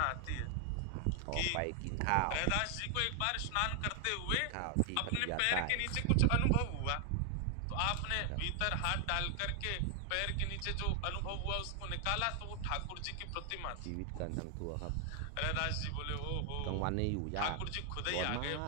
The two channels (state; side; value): different; both; correlation 0.00